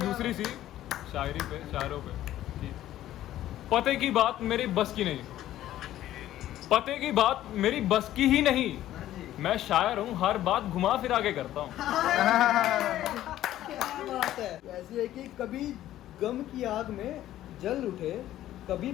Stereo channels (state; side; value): quieter; right; 13.3 dB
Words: दूसरी सी शायरी पे, शायरों पे कि पते की बात मेरी बस की नहीं, पते की बात मेरी बस की ही नहीं, मैं शायर हूँ हर बात घुमा फिरा के करता हूँ। क्या बात है। ऐसी है कि कभी गम की आग में जल उठे, कभी